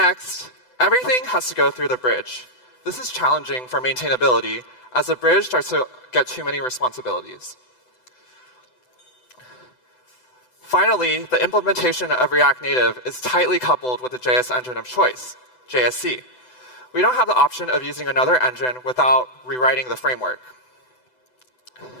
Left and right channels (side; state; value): right; late; 7.9 ms